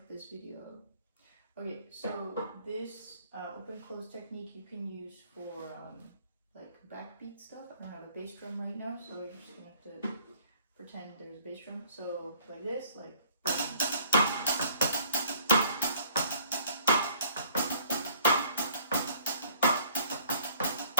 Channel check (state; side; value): inverted; both; correlation -0.56